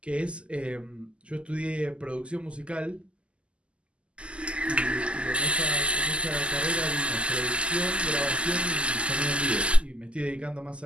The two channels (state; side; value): late; left; 0.054 ms